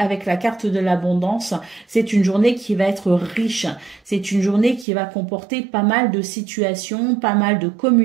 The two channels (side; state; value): left; drops out; at 4.9 s